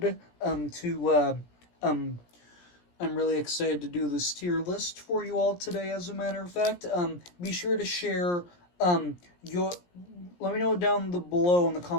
um I'm really excited to do this tier list for you all today, as a matter of fact. Be sure to share your. Let me know down below in the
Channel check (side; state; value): right; late; 17 ms